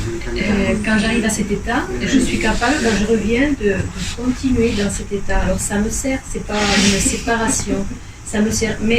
quand j'arrive à cet état, je suis capable, quand je reviens, de continuer dans cet état. Alors ça me sert, c'est pas une séparation, ça me sert,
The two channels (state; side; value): identical; both; correlation 1.00